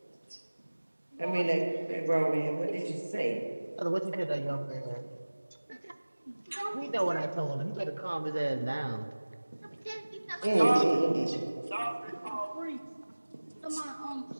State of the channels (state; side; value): inverted; both; correlation -1.00